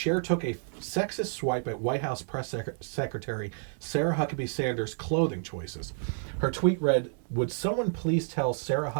took a sexist swipe at White House Press Secretary Sarah Huckabee Sanders' clothing choices. Her tweet read, "Would someone please tell Sarah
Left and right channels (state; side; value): silent; left; 58 dB below the other